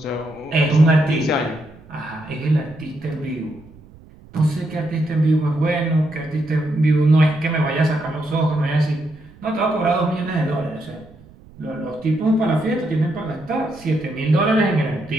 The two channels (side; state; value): right; noise; rumble, 23 dB below the sound